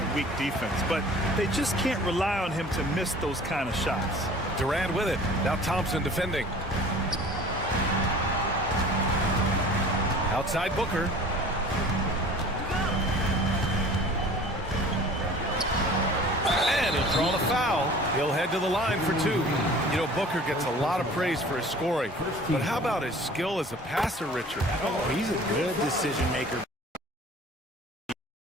weak defense, but they just can't rely on him to miss those kind of shots. Durant with it. Now Thompson defending. Outside Booker. And he'll draw the foul. He'll head to the line for 2. You know, Booker gets a lot of praise for his scoring. But how about his skill as a passer, Richard? Oh, he's a good decision maker.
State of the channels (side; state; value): both; normal; correlation 0.45